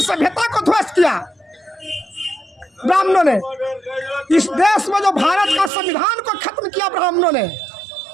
को ध्वस्त किया ब्राह्मणों ने। इस देश में जो भारत का संविधान को खत्म किया ब्राह्मणों ने,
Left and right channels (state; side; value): drops out; left; at 5.7 s